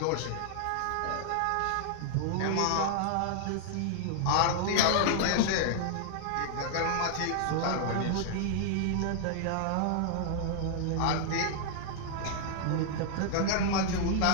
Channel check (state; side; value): different; both; correlation -0.01